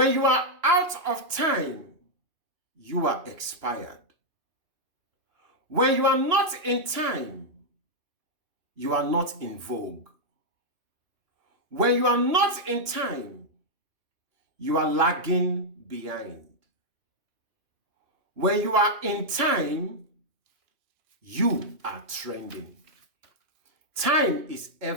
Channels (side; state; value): left; late; 2.9 ms